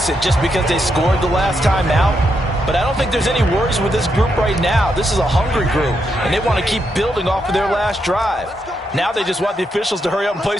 just because they scored the last time out. But I don't think there's any worries with this group right now. This is a hungry group, and they want to keep building off of their last drive. Now they just want the officials to hurry up and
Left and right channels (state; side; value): normal; both; correlation 0.81